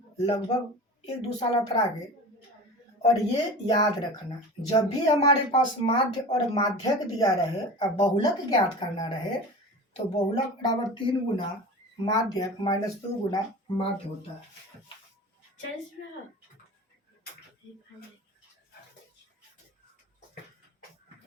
लगभग 1-2 साल अतरा के। और ये याद रखना, जब भी हमारे पास माध्य और माध्यक दिया रहे और बहुलक ज्ञात करना रहे तो बहुलक बराबर 3 गुना माध्यक माइनस 2 गुना माध्य होता है।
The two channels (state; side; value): normal; both; correlation 0.34